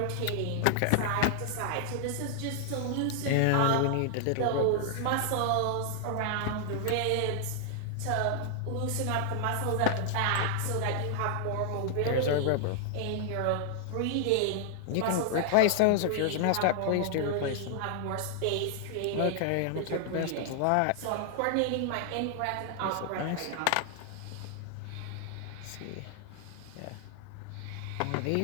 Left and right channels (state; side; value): different; both; correlation -0.01